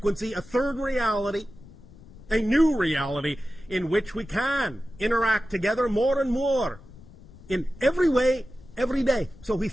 a third reality, a new reality in which we can interact together more and more in every way, every day. So we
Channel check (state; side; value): noise; left; rumble, 20 dB below the sound